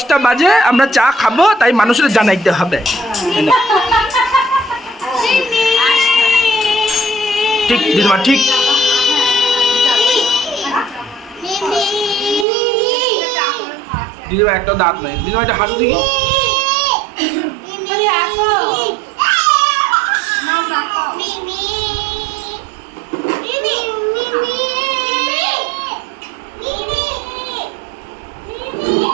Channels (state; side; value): drops out; left; at 12.5 s